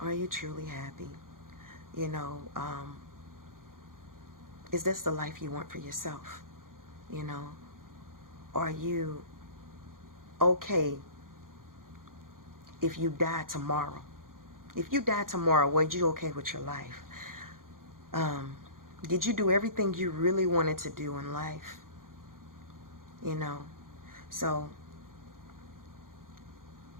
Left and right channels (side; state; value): left; late; 0.90 ms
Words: you truly happy? You know, is this the life you want for yourself? You know, are you okay if you die tomorrow? If you die tomorrow, were you okay with your life? Did you do everything you really wanted to do in life? You know, so